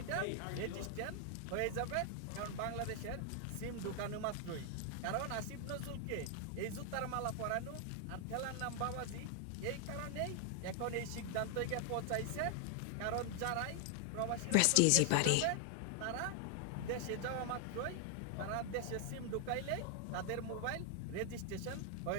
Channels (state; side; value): different; both; correlation 0.00